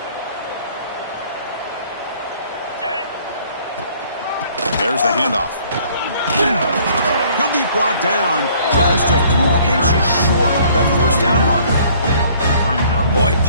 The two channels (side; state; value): both; inverted; correlation -0.58